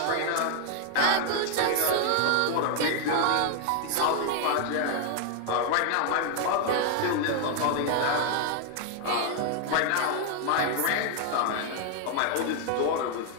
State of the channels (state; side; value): different; both; correlation 0.00